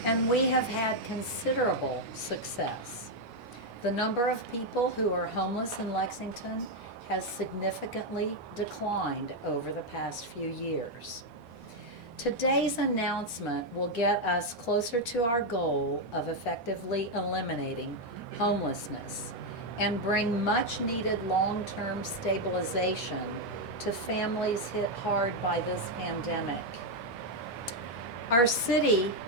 And we have had considerable success. The number of people who are homeless in Lexington has significantly declined over the past few years. Today's announcement will get us closer to our goal of effectively eliminating homelessness and bring much needed long-term stabilization to families hit hard by this pandemic. Our city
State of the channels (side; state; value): both; normal; correlation 0.02